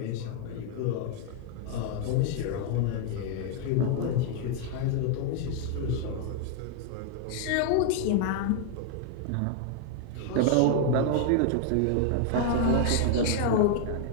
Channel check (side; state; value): both; different; correlation 0.00